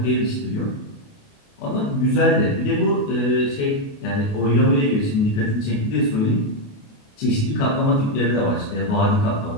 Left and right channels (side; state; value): right; late; 28 ms